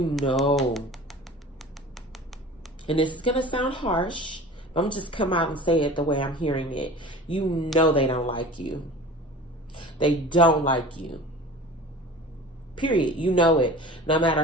this is going to sound harsh, but I'm just come out and say it the way I'm hearing it. You know they don't like you. They don't like you. Period. You know it. No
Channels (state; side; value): normal; both; correlation 0.39